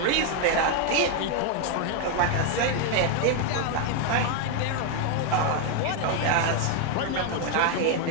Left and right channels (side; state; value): both; different; correlation 0.01